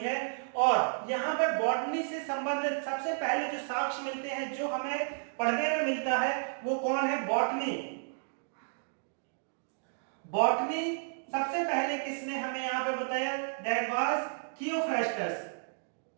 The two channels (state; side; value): silent; left; digital silence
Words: है। और यहाँ पे बॉटनी से संबंधित सबसे पहले जो साक्ष्य मिलते हैं, जो हमें पढ़ने में मिलता है, वो कौन है? बॉटनी। बॉटनी सबसे पहले किसने हमें यहाँ पे बताया? That was Theophrastus.